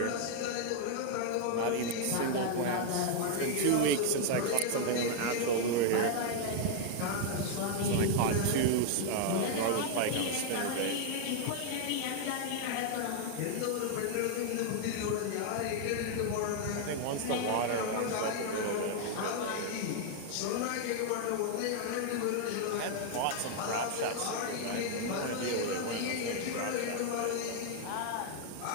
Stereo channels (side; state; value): both; different; correlation 0.00